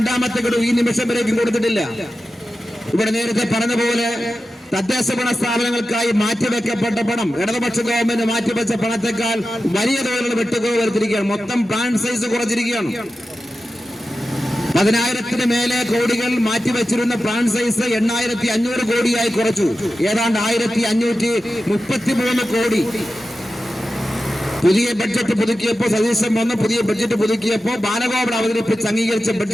ഗഡു ഈ നിമിഷം വരേക്കും കൊടുത്തിട്ടില്ല. ഇവിടെ നേരത്തെ പറഞ്ഞ പോലെ തദ്ദേശ ഭരണ സ്ഥാപനങ്ങൾക്കായി മാറ്റിവെക്കപ്പെട്ട പണം ഇടതുപക്ഷ ഗവൺമെന്റ് മാറ്റിവെച്ച പണത്തെക്കാൾ വലിയ തോതിലുള്ള വെട്ടുകുറവ് വരുത്തിയിരിക്കുകയാണ്. മൊത്തം പ്ലാൻ സൈസ് കുറച്ചിരിക്കുകയാണ്. 10,000-ന് മേലെ കോടികൾ മാറ്റിവെച്ചിരുന്ന പ്ലാൻ സൈസ് 8,500 കോടിയായി കുറച്ചു. ഏതാണ്ട് 1,533 കോടി. പുതിയ ബഡ്ജറ്റ് പുതുക്കിയപ്പോൾ സതീശൻ വന്ന് പുതിയ ബഡ്ജറ്റ് പുതുക്കിയപ്പോൾ ബാലഗോപാൽ അവതരിപ്പിച്ച് അംഗീകരിച്ച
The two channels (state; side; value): normal; both; correlation 0.93